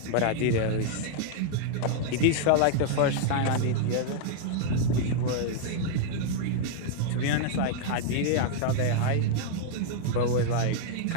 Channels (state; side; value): different; both; correlation -0.01